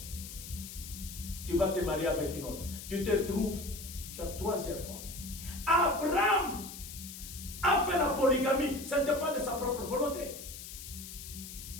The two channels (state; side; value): noise; left; hiss, 11 dB below the sound